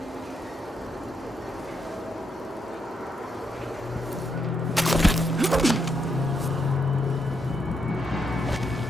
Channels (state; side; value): normal; both; correlation 0.80